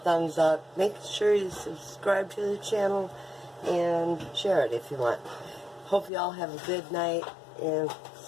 up. Make sure you subscribe to the channel and share it if you want. Hope you all have a good night, and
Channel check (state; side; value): drops out; right; at 6.1 s